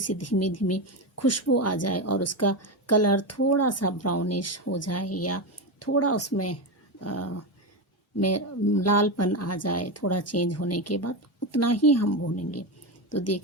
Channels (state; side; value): normal; both; correlation 0.14